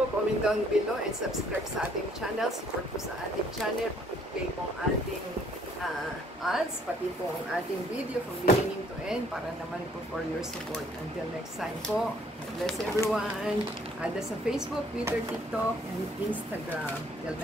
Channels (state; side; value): normal; both; correlation 0.62